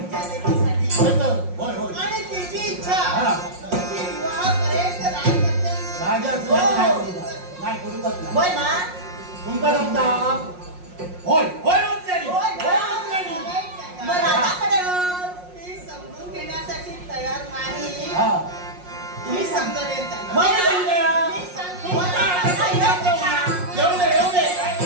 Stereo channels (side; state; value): left; late; 5.6 ms